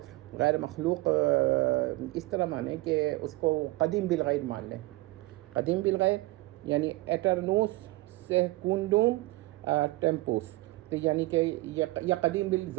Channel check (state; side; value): quieter; left; 20.6 dB